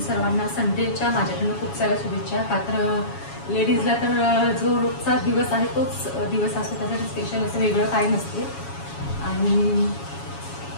संडेच्या माझ्याकडून खूप साऱ्या शुभेच्छा. का तर लेडीजला तर जो रोजचा दिवस आहे तोच दिवस असतो, त्यासाठी स्पेशल असं वेगळं काही नसते. आणि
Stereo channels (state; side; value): late; right; 7.2 ms